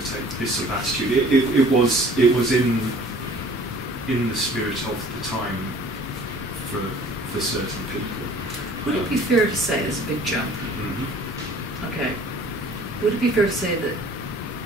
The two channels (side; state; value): both; normal; correlation 0.51